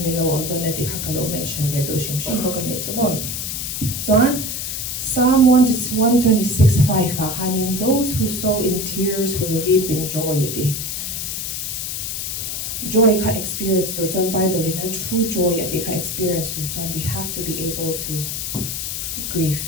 nilo ang to neti hakalo mention vedo shimshim ko kanito mo. So Psalm 126:5 hanin, those who sow in tears will reap in joy. Joy ka experience turton Bible in a true joy ka experience turton. We have to be able to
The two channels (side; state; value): left; noise; hiss, 4 dB below the sound